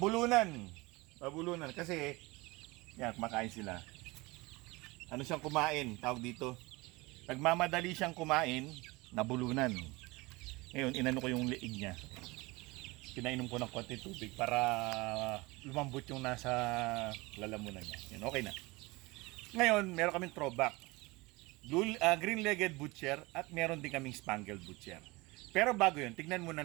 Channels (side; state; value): left; quieter; 23.1 dB